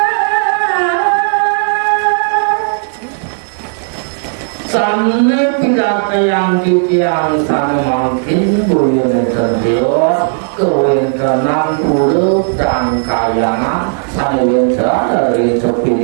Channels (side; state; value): left; silent; digital silence